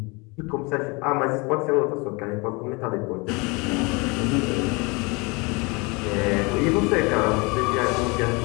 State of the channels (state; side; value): quieter; right; 27.8 dB